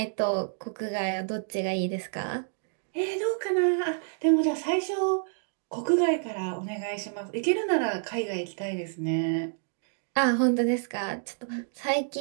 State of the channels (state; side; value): silent; left; digital silence